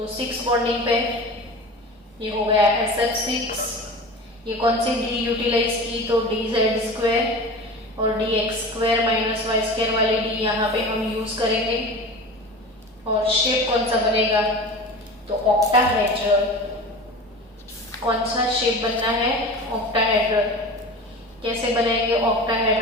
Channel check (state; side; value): normal; both; correlation 0.34